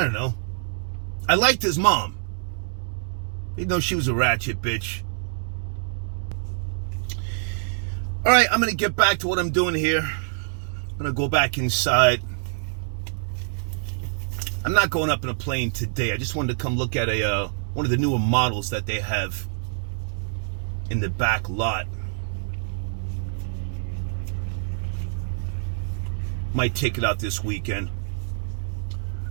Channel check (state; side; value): silent; left; digital silence